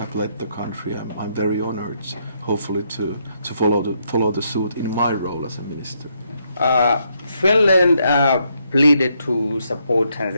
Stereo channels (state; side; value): inverted; both; correlation -0.76